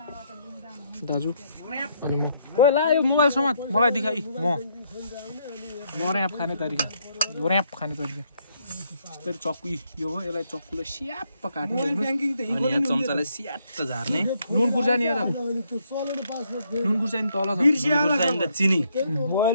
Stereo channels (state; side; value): inverted; both; correlation -0.72